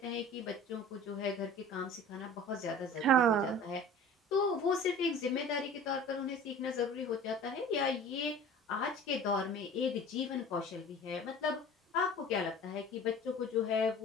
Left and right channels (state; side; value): normal; both; correlation 0.42